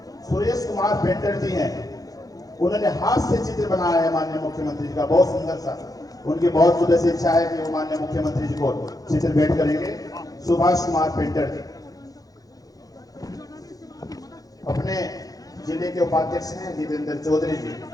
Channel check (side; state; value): right; late; 0.18 ms